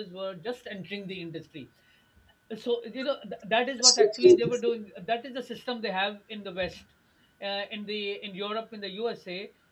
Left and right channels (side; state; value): both; identical; correlation 1.00